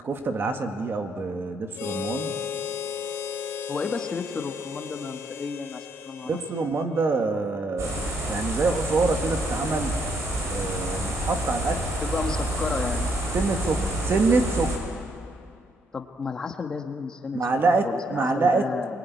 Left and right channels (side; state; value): both; normal; correlation 0.73